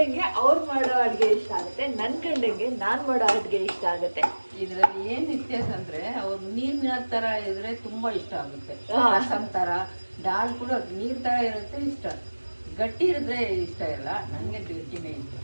ಅವ್ರು ಮಾಡೋ ಅಡುಗೆ ಇಷ್ಟ ಆಗುತ್ತೆ, ನನ್ನ ಗಂಡಂಗೆ ನಾನು ಮಾಡೋ ಅಡುಗೆ ಇಷ್ಟ ಆಗುತ್ತೆ. ಇದರಲ್ಲಿ ಏನ್ ವ್ಯತ್ಯಾಸ ಅಂದ್ರೆ ಅವ್ರು ನೀರಿನ ತರ ಇದ್ರೆ ತುಂಬಾ ಇಷ್ಟ ಆಗುತ್ತೆ. ರಸಂ ತರ, ದಾಲ್ ಕೂಡ ನೀರ್ ತರ ಇರುತ್ತೆ ಇಷ್ಟ. ಗಟ್ಟಿ ಇರಿದ್ರೆ ಇಷ್ಟ ಇಲ್ಲ, ನಂಗೆ ಗಟ್ಟಿನೇ ಇಷ್ಟ.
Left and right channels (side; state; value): both; inverted; correlation -1.00